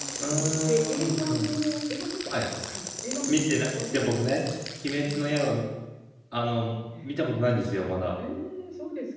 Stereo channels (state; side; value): identical; both; correlation 1.00